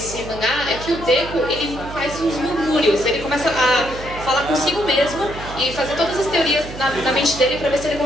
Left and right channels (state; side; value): noise; right; hum, 12 dB below the sound